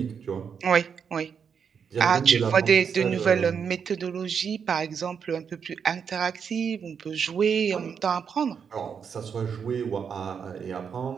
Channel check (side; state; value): left; quieter; 6.8 dB